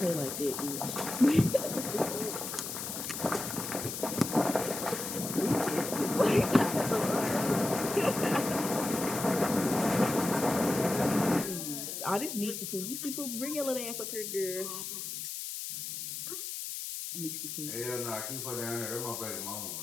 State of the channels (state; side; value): noise; left; hiss, 6 dB below the sound